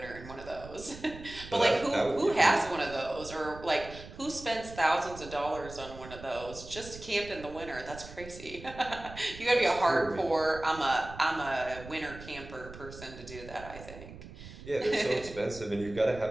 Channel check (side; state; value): right; noise; rumble, 15 dB below the sound